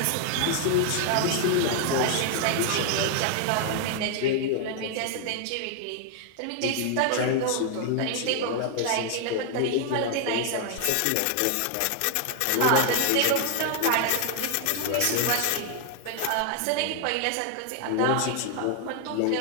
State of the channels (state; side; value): different; both; correlation 0.00